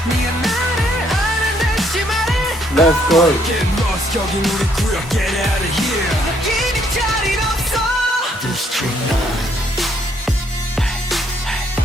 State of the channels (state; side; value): normal; both; correlation 0.69